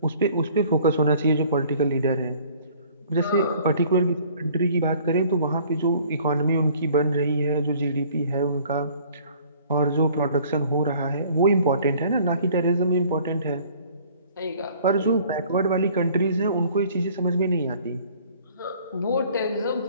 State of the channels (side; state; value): both; inverted; correlation -0.54